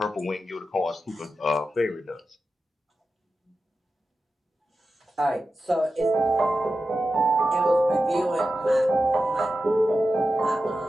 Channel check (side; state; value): both; normal; correlation 0.92